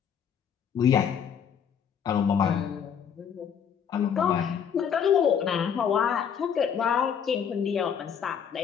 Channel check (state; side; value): quieter; right; 7.8 dB